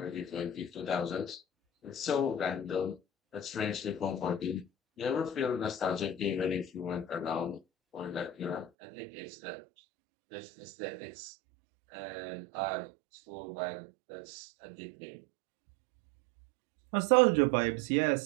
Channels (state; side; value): drops out; left; at 8.7 s